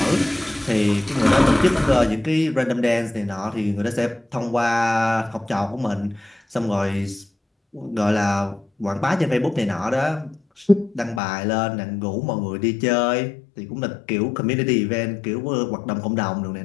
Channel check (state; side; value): drops out; right; at 11.2 s